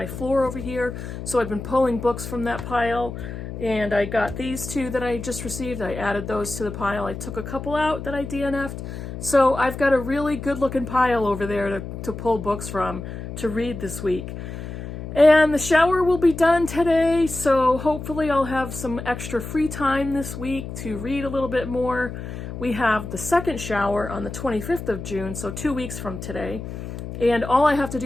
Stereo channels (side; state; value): left; noise; hum, 9 dB below the sound